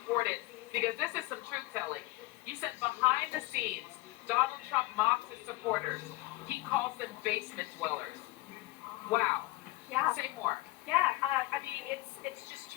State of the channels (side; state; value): right; quieter; 19.6 dB